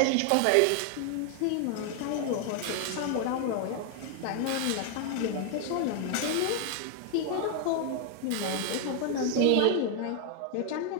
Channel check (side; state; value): both; different; correlation 0.00